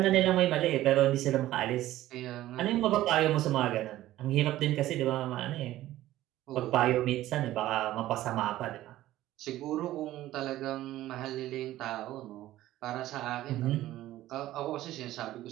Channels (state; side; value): quieter; left; 14.9 dB